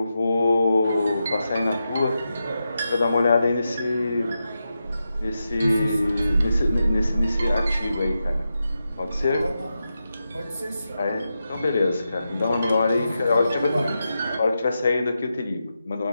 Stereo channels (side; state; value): both; inverted; correlation -0.89